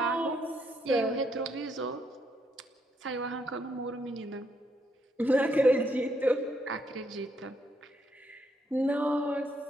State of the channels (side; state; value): both; normal; correlation 0.75